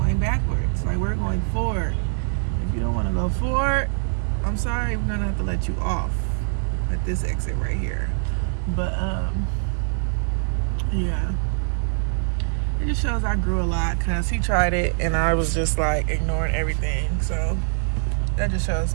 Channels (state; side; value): silent; left; digital silence